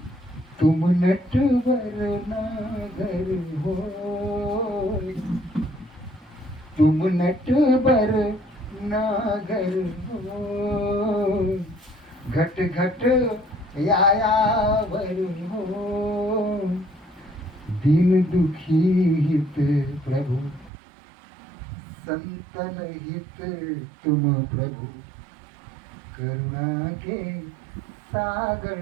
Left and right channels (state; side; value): drops out; left; at 20.7 s